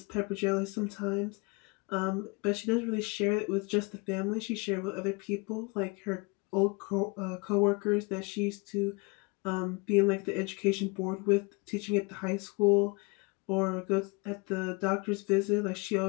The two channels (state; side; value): quieter; right; 28.6 dB